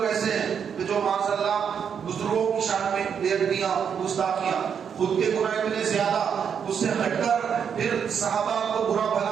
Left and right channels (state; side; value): quieter; left; 7.4 dB